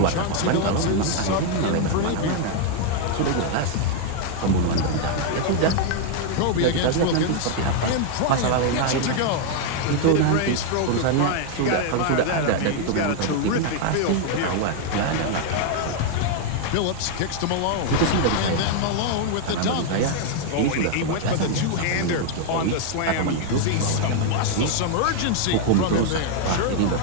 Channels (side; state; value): both; different; correlation 0.00